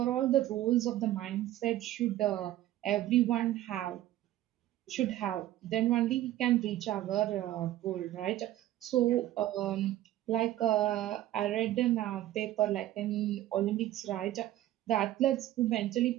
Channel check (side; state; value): left; quieter; 14.1 dB